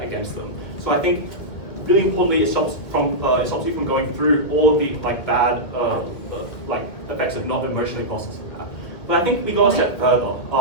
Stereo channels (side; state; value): right; late; 2.3 ms